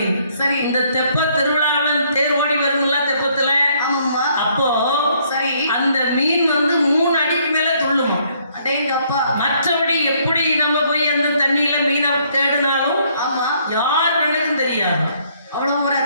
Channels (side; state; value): both; inverted; correlation -0.66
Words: சரி, இந்த தெப்ப திருவிழாவில் தேர் ஓடி வரும்ல தெப்பத்துல. ஆமாம்மா. அப்போ சரி, அந்த மீன் வந்து 3 அடிக்கு மேல துள்ளும். அடேங்கப்பா. மற்றபடி எப்படி நம்ம போய் அந்த தண்ணியில மீனை தேடினாலும் ஆமா யார் கண்ணுக்கும் தெரியாது. அவ்வளவு ஒரு